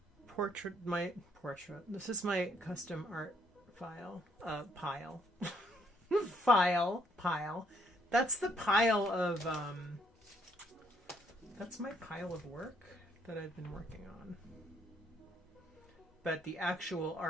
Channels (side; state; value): both; normal; correlation 0.69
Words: portrait. This is my custom art pile. Pile. That's the pile of, that's my pile of work that I've been working on. But the actual